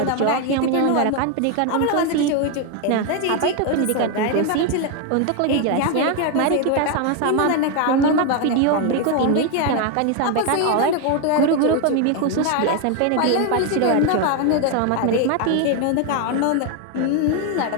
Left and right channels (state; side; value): different; both; correlation 0.01